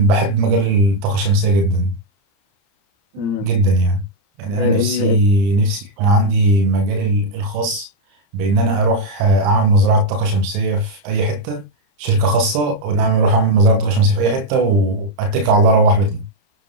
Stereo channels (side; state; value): left; late; 30 ms